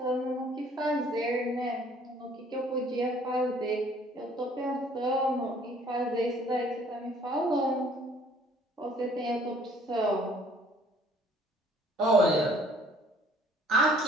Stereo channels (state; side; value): normal; both; correlation 0.58